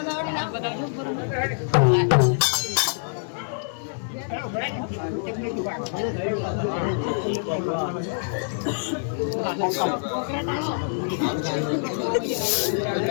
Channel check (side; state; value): right; silent; digital silence